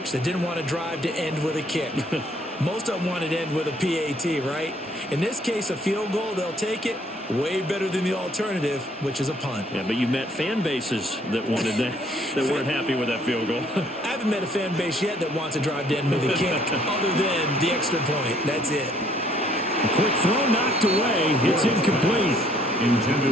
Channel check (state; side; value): normal; both; correlation 0.63